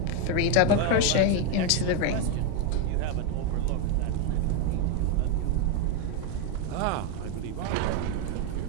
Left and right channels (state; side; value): different; both; correlation 0.02